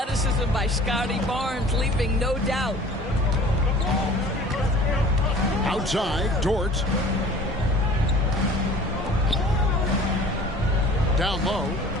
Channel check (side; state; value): both; normal; correlation 0.46